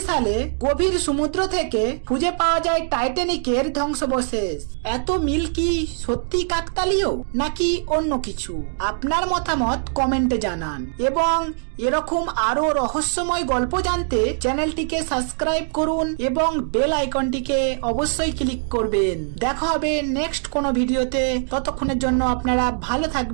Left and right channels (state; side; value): silent; left; digital silence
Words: সালে গভীর সমুদ্র থেকে খুঁজে পাওয়া যায় টাইটানিকের ধ্বংসাবশেষ। এত মিল কি সত্যি কাকতালীয় নাকি অন্য কিছু? আপনার মতামত কমেন্টে জানান এবং এরকম আরো রহস্যময় গল্প জানতে চ্যানেলটিকে সাবস্ক্রাইব করুন এবং বেল আইকনটিকে অবশ্যই ক্লিক করবেন। দেখা হবে নেক্সট কোনো ভিডিওতে। ততক্ষণের জন্য আপনারা ভালো